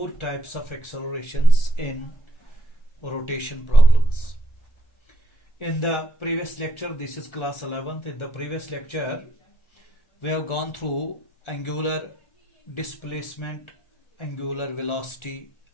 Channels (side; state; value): right; late; 1.4 ms